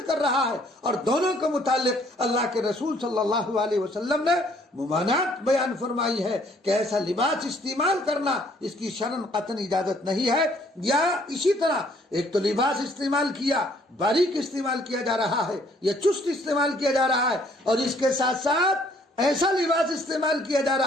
کر رہا ہے. اور دونوں کے متعلق اللہ کے رسول صلی اللہ علیہ وسلم نے ممانعت بیان فرمائی ہے کہ ایسا لباس استعمال کرنا اس کی شرعاً قطعاً اجازت نہیں ہے. یا اسی طرح ایک تو لباس استعمال کیا، باریک استعمال کیا جا رہا ہے یا چست استعمال کیا جا رہا ہے، اور اس کے ساتھ ساتھ ایسا لباس استعمال کیا جا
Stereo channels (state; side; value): normal; both; correlation 0.63